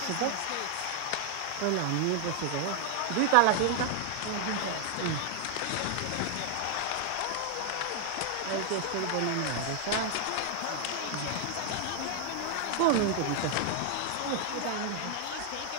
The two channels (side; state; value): both; different; correlation 0.00